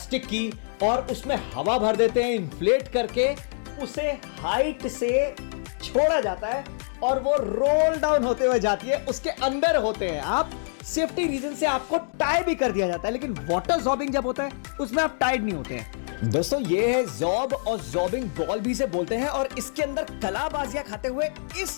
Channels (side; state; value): right; silent; digital silence